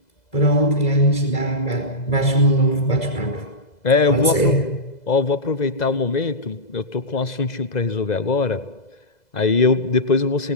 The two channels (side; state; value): right; late; 2.0 ms